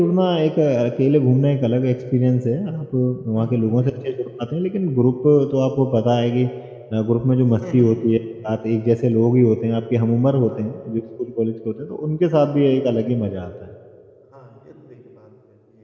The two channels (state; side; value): identical; both; correlation 1.00